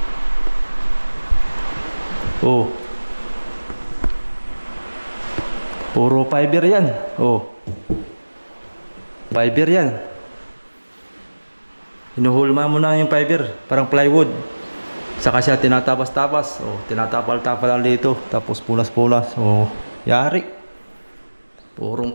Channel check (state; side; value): inverted; both; correlation -1.00